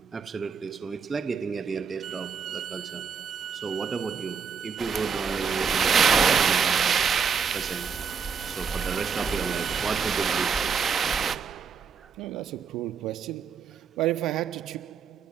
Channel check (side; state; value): left; quieter; 6.2 dB